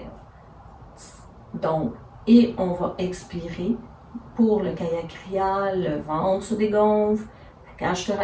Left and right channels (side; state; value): both; identical; correlation 1.00